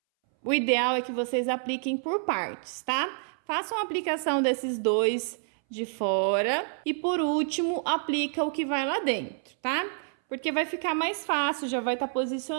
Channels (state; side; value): silent; left; 59 dB below the other